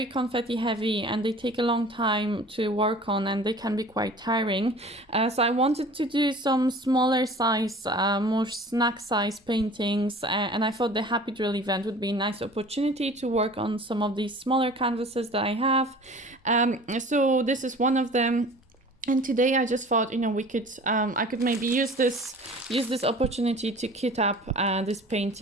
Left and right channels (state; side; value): normal; both; correlation 0.44